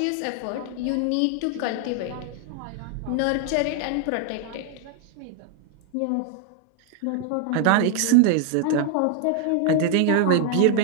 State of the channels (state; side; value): different; both; correlation 0.00